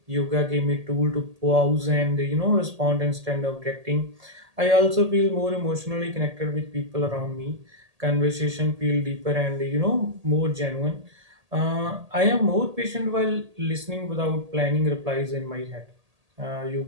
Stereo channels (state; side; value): late; left; 1.8 ms